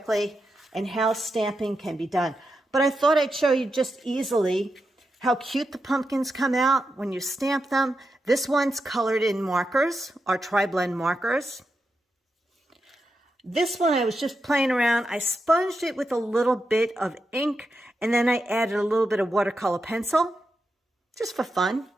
and how stamping can be done. But I thought I'd show you just easily how cute the pumpkins come out when you stamp them. This one's colored in markers, our tri-blend markers. This one I was just playing around. I sponged it with a little bit of ink, and then I added a little bit of watercolor pencil, just for fun.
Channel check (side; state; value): both; normal; correlation 0.87